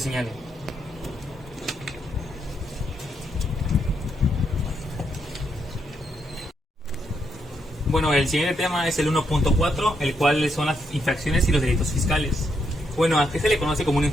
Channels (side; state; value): both; normal; correlation 0.78